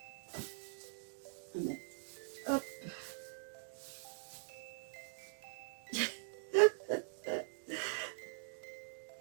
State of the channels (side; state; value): left; silent; digital silence